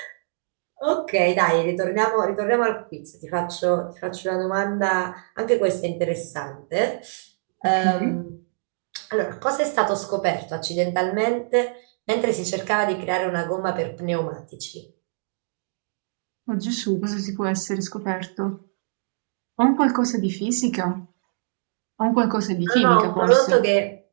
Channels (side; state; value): left; silent; digital silence